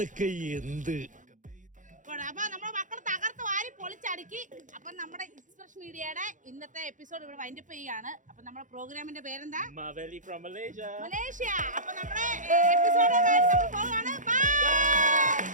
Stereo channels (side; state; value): left; late; 0.37 ms